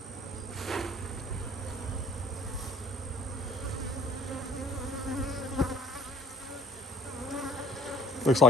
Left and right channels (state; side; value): normal; both; correlation 0.54